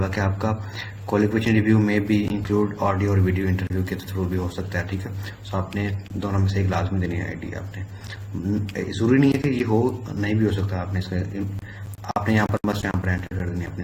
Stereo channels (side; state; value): both; identical; correlation 1.00